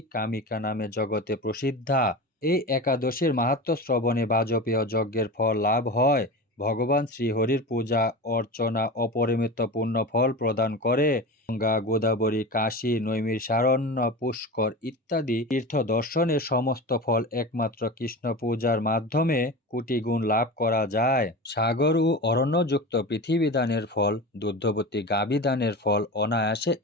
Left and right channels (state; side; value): normal; both; correlation 0.28